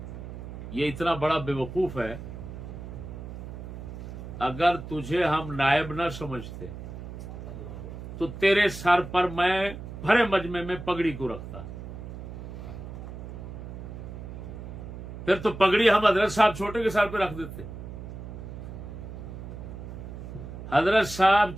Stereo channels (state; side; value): noise; right; hum, 10 dB below the sound